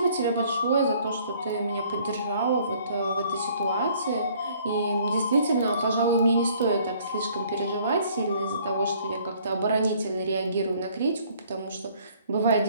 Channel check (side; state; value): both; inverted; correlation -0.59